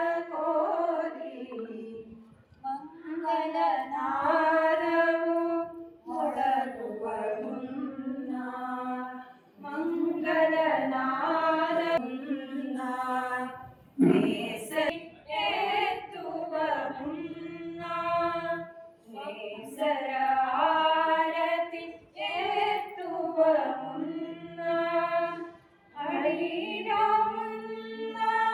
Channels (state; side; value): identical; both; correlation 1.00